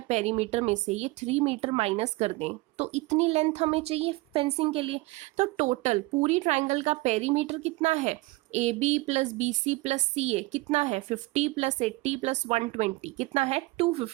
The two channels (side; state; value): left; quieter; 21.6 dB